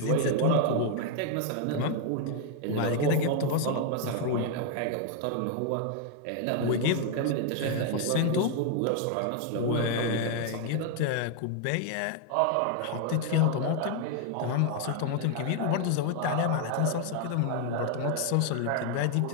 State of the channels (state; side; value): different; both; correlation 0.00